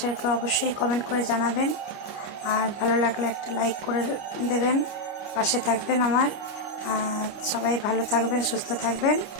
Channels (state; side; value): late; right; 29 ms